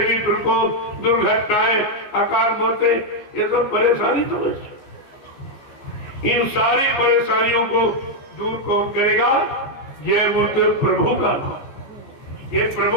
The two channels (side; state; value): right; late; 15 ms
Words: प्रकोप, दुर्घटनाएं, अकाल मौतें, ये सब परेशानी तो है। इन सारी परेशानियों को दूर कौन करेगा? जय गुरुदेव प्रभु का नाम। ये